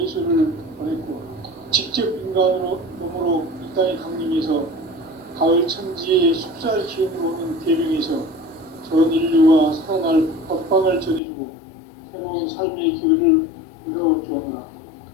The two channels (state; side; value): drops out; right; at 11.2 s